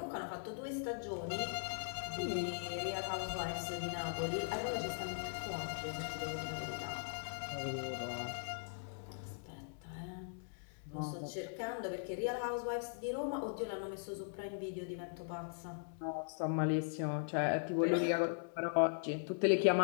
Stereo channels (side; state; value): right; silent; digital silence